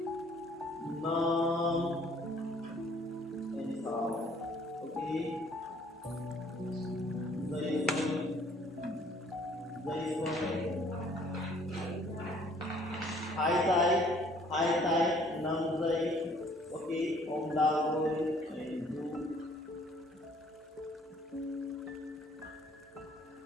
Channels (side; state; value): both; normal; correlation 0.59